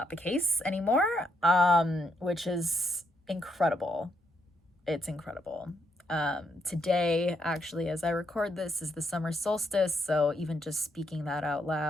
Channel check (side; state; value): both; normal; correlation 0.77